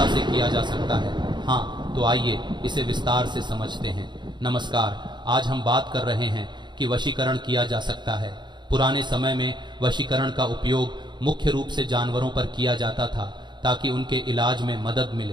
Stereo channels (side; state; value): left; late; 0.22 ms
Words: से किया जा सकता है? हाँ, तो आइए इसे विस्तार से समझते हैं। नमस्कार, आज हम बात कर रहे हैं कि वशीकरण किया जा सकता है। पुराने समय में वशीकरण का उपयोग मुख्य रूप से जानवरों पर किया जाता था ताकि उनके इलाज में मदद